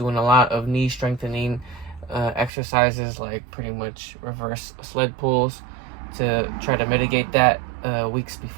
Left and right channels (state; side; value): drops out; left; at 2.5 s